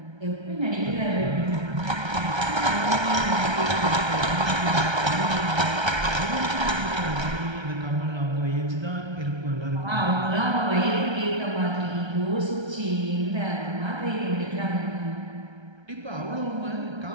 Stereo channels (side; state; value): left; late; 1.3 ms